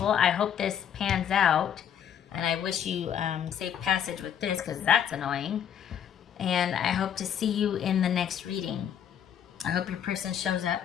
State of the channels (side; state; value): right; quieter; 9.0 dB